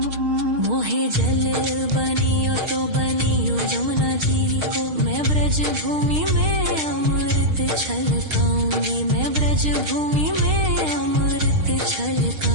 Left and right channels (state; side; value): late; left; 6.5 ms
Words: मोहे जल बनियो तो बनियो यमुना जी को, मैं ब्रज भूमि में अमृत छलकाऊंगी, मैं ब्रज भूमि में अमृत